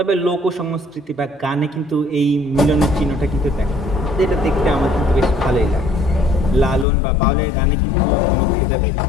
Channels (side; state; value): right; drops out; at 6.9 s